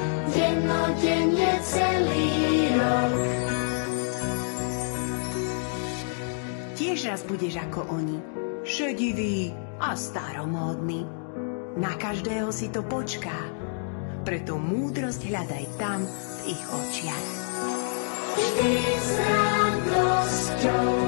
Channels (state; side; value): silent; right; digital silence